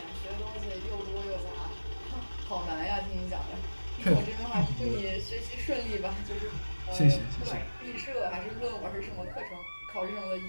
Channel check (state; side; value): inverted; both; correlation -1.00